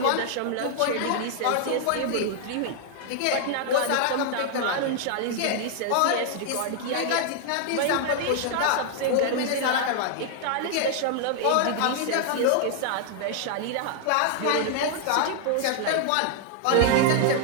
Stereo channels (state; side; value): different; both; correlation 0.00